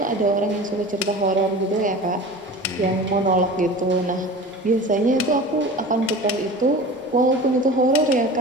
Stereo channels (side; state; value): both; normal; correlation 0.36